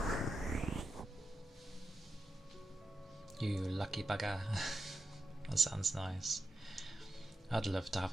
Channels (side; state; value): both; normal; correlation 0.88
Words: You lucky bugger. That sounds nice. I'd love to